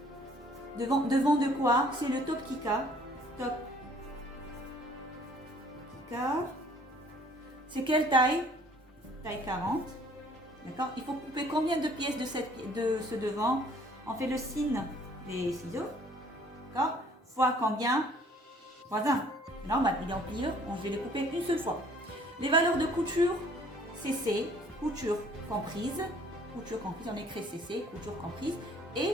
Devant de quoi? C'est le top kika. Top kika. C'est quelle taille? Taille 40. D'accord? Il faut couper combien de pièces de ce devant? On fait le signe des ciseaux. D'accord? Fois combien? Fois 1. C'est normal, il est en pliure. Je vais les couper une seule fois. Les valeurs de couture, CC, couture comprise. Couture comprise, on écrit CC, couture comprise,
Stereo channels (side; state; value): both; normal; correlation 0.57